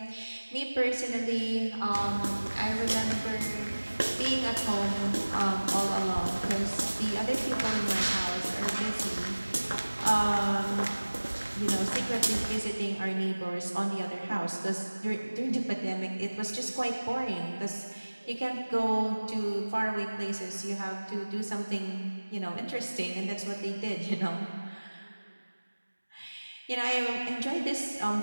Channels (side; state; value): both; inverted; correlation -1.00